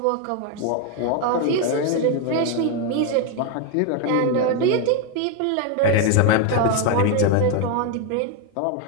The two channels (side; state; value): both; different; correlation 0.01